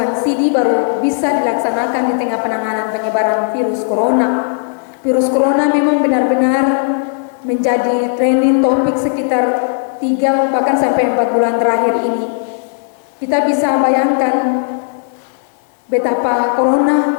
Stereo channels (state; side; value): silent; right; 61 dB below the other